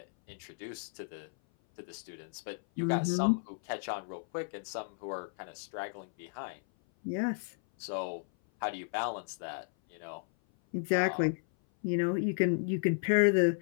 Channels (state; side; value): silent; right; 55 dB below the other